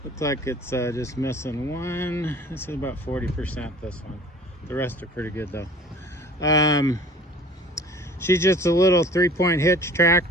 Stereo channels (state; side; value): normal; both; correlation 0.46